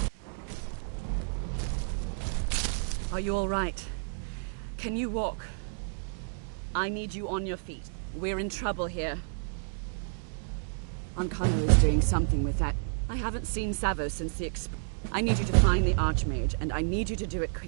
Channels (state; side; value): silent; left; digital silence